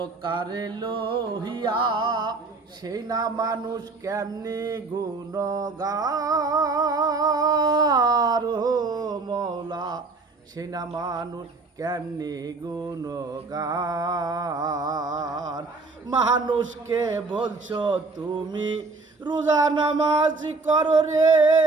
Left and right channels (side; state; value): left; quieter; 3.8 dB